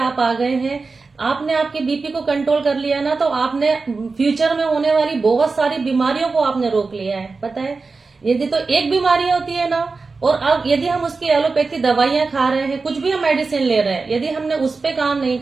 आ गए हैं। आपने आपके बीपी को कंट्रोल कर लिया ना, तो आपने फ्यूचर में होने वाली बहुत सारी बीमारियों को आपने रोक लिया है। पता है, यदि तो एक बीमारी होती है ना, और अब यदि हम उसकी एलोपैथी दवाइयां खा रहे हैं, कुछ भी हम मेडिसिन ले रहे हैं, यदि हमने उस पे काम नहीं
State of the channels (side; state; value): left; quieter; 4.2 dB